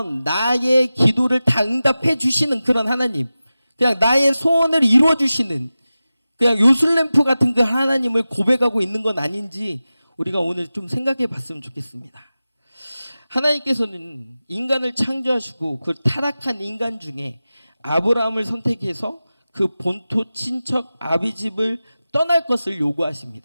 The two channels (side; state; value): both; inverted; correlation -0.95